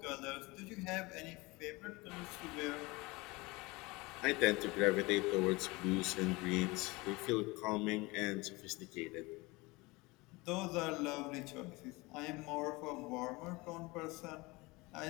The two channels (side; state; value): right; quieter; 23.6 dB